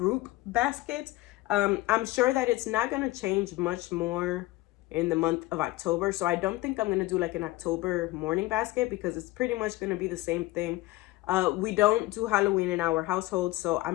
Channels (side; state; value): right; quieter; 19.0 dB